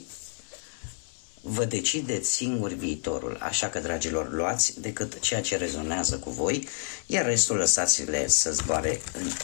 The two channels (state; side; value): silent; right; 59 dB below the other